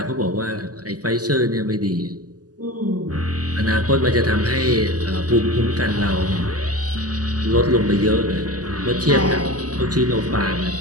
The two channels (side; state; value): left; late; 0.67 ms